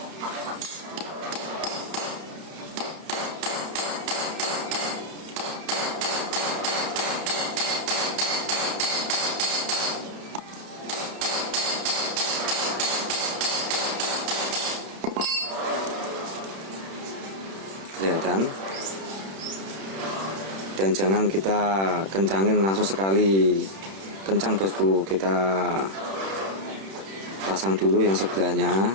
kelihatan. Dan jangan kita kencangin langsung sekali kencang bosku, kita pasang dulu yang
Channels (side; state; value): left; late; 31 ms